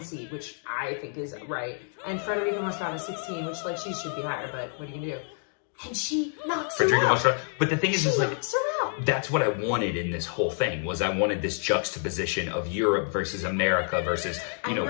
seed, which I think is right. And Federica Mostrada, 16, which she should be higher, but what are you gonna do? And she knocks her out. But the thing is that's what I wanted in this whole thing, was I wanted this juxtaposition of Europe versus America versus,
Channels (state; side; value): silent; right; 55 dB below the other